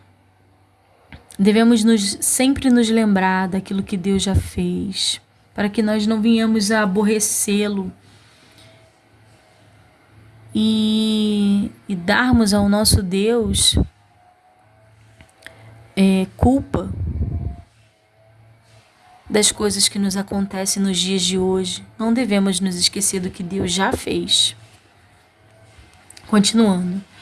devemos sempre nos lembrar daquilo que Deus já fez, para que nós não venhamos a aborrecê-lo e darmos ao nosso Deus culpa das coisas que nos acontecem nos dias de hoje. Não devemos nos esquecer do que Deus já fez. Continuando.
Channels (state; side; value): identical; both; correlation 1.00